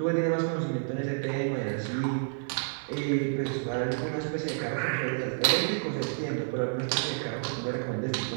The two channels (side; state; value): left; silent; digital silence